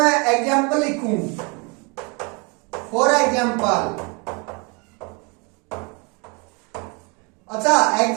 एग्जांपल लिखूं, फॉर एग्जांपल, अच्छा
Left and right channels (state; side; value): quieter; left; 31.3 dB